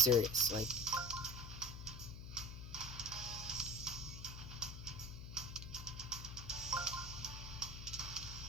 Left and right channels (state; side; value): noise; left; hum, 9 dB below the sound